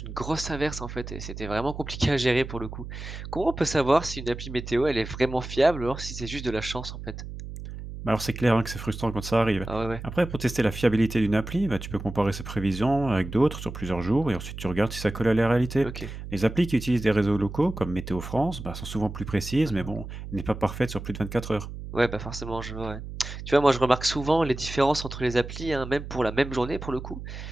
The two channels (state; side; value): noise; right; hum, 10 dB below the sound